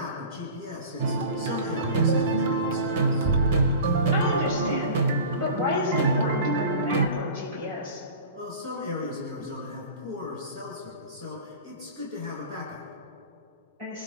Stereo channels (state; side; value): inverted; both; correlation -0.37